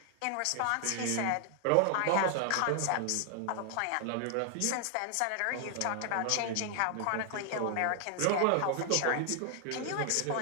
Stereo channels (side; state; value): both; different; correlation 0.00